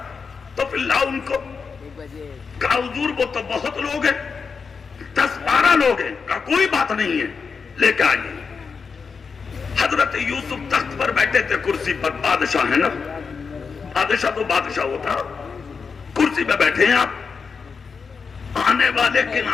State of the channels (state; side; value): quieter; right; 5.4 dB